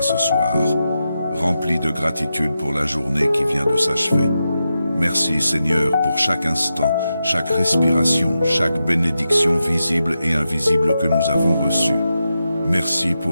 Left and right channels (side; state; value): both; inverted; correlation -0.89